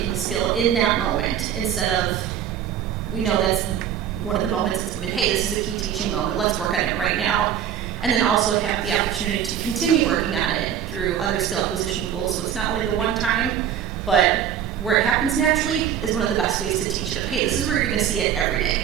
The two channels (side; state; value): left; quieter; 9.5 dB